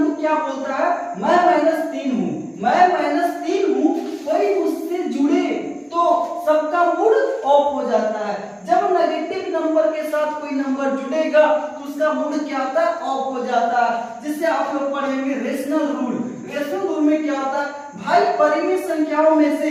क्या बोलता है, मैं -3 हूँ, मैं -3 हूँ, कोई मुझसे जुड़े तो सबका मूड ऑफ हो जाता है। जब नेगेटिव नंबर के साथ कोई नंबर जुड़ेगा तो उसका मूड क्या होता है, ऑफ हो जाता है। जिससे आप लोग पढ़ेंगे रेशनल रूल। रेशनल रूल में क्या होता है भाई, परिमेय संख्याओं में से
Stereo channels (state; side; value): identical; both; correlation 1.00